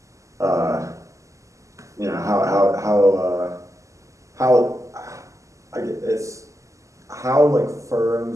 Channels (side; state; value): left; late; 0.16 ms